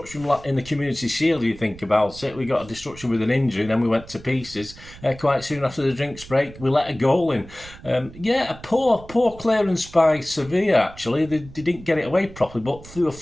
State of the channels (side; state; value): right; noise; rumble, 18 dB below the sound